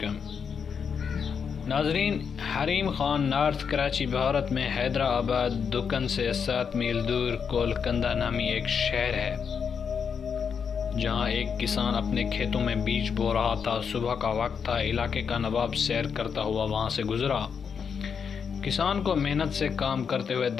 ناظرین، حریم خان نارتھ کراچی بھارت میں حیدرآباد دکن سے 7 میل دور کولکنڈہ نامی ایک شہر ہے، جہاں ایک کسان اپنے کھیتوں میں بیج بو رہا تھا۔ صبح کا وقت تھا، علاقے کا نواب سیر کرتا ہوا وہاں سے گزرا۔ کسان کو محنت سے کام کرتے ہوئے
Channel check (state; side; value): quieter; right; 6.6 dB